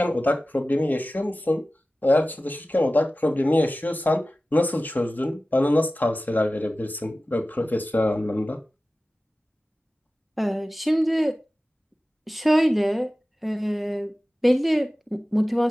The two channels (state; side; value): normal; both; correlation 0.96